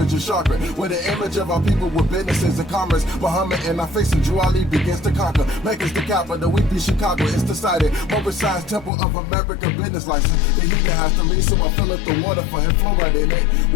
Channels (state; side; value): drops out; right; at 8.9 s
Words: of chakra. With the image of our people with businesses and commerce. Muhammad and our face and Drew Ali begins to conquer. Make us the capital, we be Chicago, it's decided. Moorish Science Temple of America business license. The heater has to leave, so I fill up the water for him, fluoride in it.